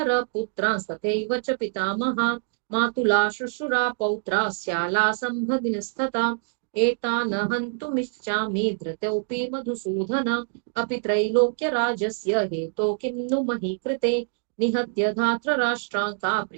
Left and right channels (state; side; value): silent; left; digital silence